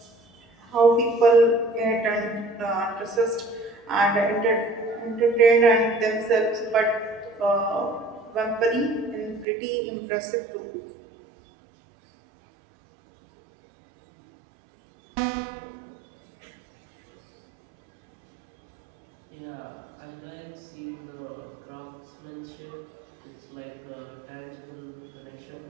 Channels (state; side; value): drops out; left; at 9.5 s